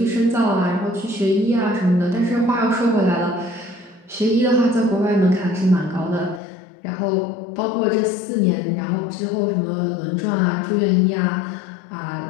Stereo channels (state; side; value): drops out; right; at 6.4 s